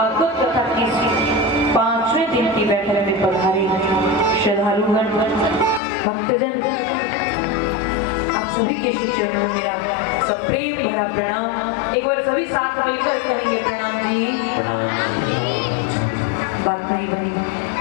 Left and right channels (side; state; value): right; drops out; at 5.8 s